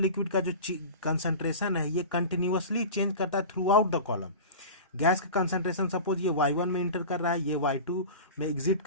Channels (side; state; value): both; inverted; correlation -0.32